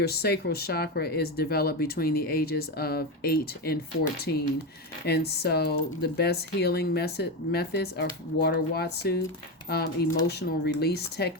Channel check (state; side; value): normal; both; correlation 0.15